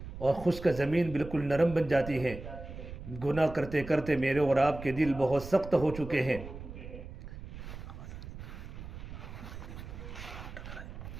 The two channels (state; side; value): noise; right; rumble, 11 dB below the sound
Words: اور خشک زمین بالکل نرم بن جاتی ہے۔ گناہ کرتے کرتے میرے اور آپ کے دل بہت سخت ہو چکے ہیں۔